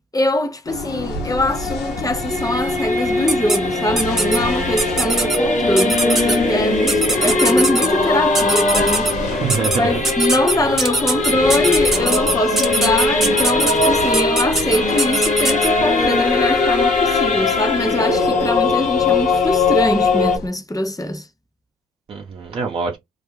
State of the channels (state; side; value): normal; both; correlation 0.60